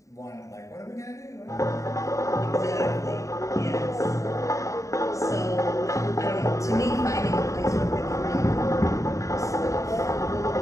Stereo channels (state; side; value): late; right; 0.15 ms